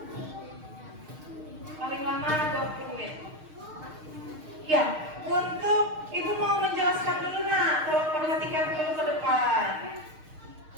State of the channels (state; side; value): late; left; 6.5 ms